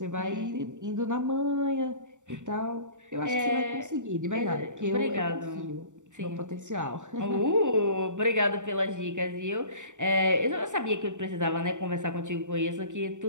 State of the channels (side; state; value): left; late; 0.85 ms